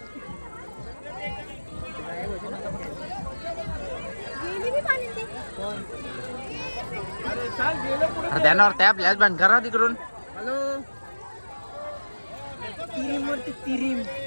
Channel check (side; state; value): both; inverted; correlation -1.00